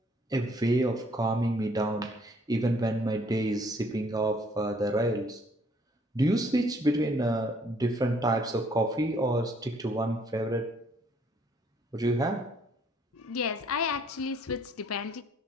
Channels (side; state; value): both; normal; correlation 0.63